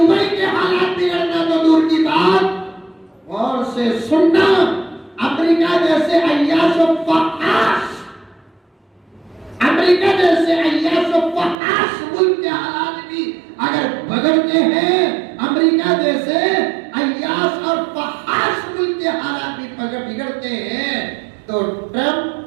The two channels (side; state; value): left; drops out; at 11.6 s